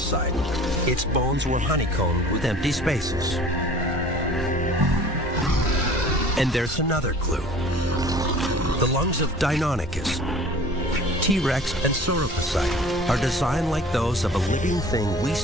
its bones were honeycombed with empty spaces. And there's another clue. The lungs of Deinonychus, T-Rex and sauropodon are designed like those of a living thing we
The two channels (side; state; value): both; normal; correlation 0.46